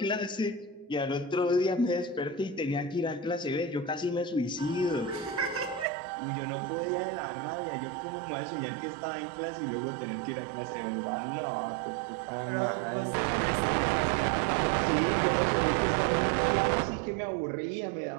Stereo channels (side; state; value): left; drops out; at 5.9 s